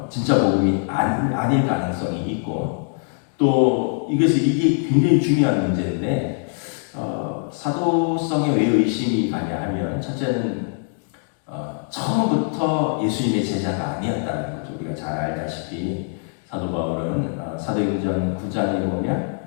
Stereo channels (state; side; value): silent; right; 64 dB below the other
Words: 진짜 복음이 아닐 가능성이 있고, 또 이게 굉장히 중요한 문제인데 사도성에 왜 의심이 가냐 하면 첫째는 처음부터 예수님의 제자가 아니었다는 거죠. 우리가 잘 알다시피 사도 바울은 사도행전 9장에 보면